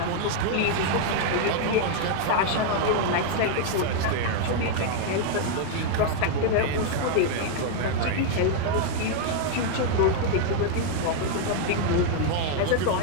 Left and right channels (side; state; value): both; different; correlation 0.00